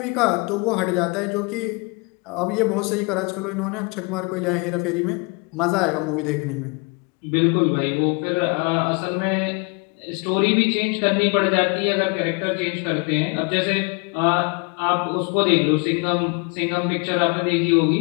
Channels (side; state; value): right; quieter; 31.4 dB